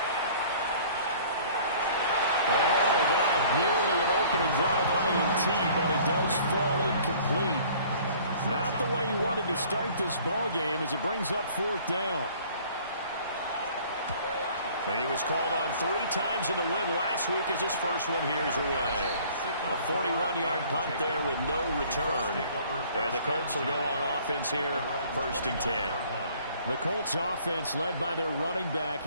And all that, nearly an opening drive INT, but it does fall incomplete. Not the way he wanted to start this ball game as it brings up 4th down. He was called on 3 times in the win last week as his first one here's away. A 41-yard punt there with no return. And the Colts will go on offense here, 1st and 10. The Colts offense led by their running back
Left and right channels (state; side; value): inverted; both; correlation -0.53